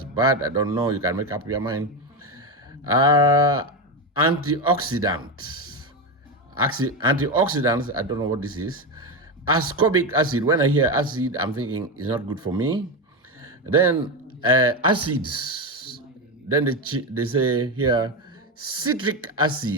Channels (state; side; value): normal; both; correlation 0.14